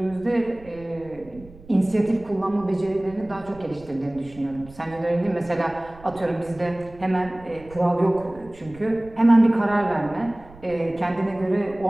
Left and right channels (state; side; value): noise; right; rumble, 21 dB below the sound